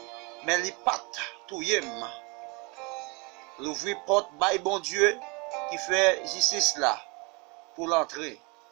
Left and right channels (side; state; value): left; quieter; 29.3 dB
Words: mais il pas tout yem. L'ouvrir porte, bail bon Dieu, qui fait justice là, pour l'entrer.